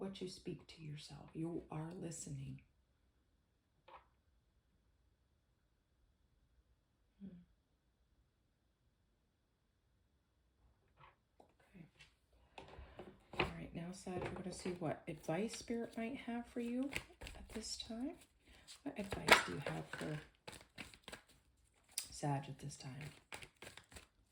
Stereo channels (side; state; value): both; identical; correlation 1.00